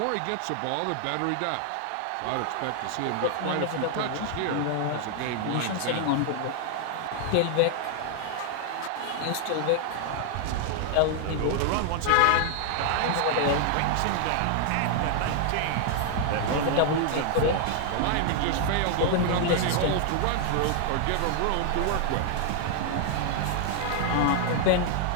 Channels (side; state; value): both; different; correlation 0.00